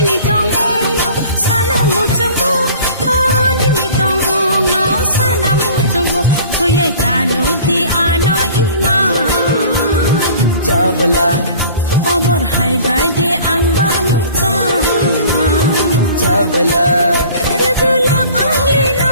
tong no sana mo chango ho nini tong no sana mo chango thoyai kanu di ano ima চাবলা Omor hai bai de ang ba mucha চাবলা Rebula angli no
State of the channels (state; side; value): inverted; both; correlation -0.46